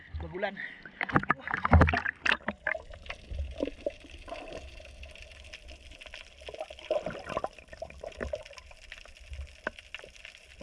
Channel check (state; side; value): identical; both; correlation 1.00